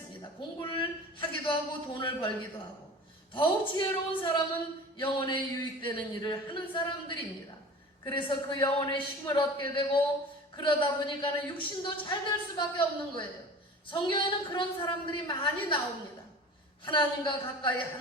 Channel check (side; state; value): both; normal; correlation 0.38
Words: 공부를 하기도 하고 돈을 벌기도 하고, 더욱 지혜로운 사람은 영혼에 유익되는 일을 하는 사람들입니다. 그래서 그 영혼의 힘을 얻게 되고, 그러다 보니까는 육신도 잘 될 수밖에 없는 거예요. 성경에는 그런 사람들이 많이 나옵니다. 하나님과 가까이